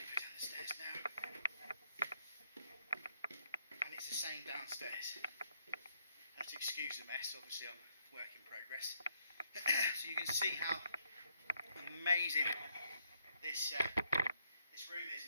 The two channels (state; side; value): inverted; both; correlation -0.74